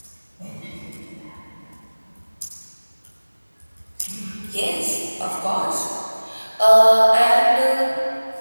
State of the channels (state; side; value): inverted; both; correlation -1.00